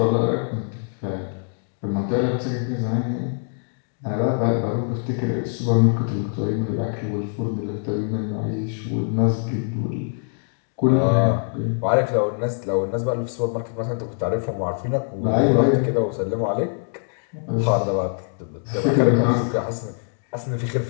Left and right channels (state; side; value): silent; right; 62 dB below the other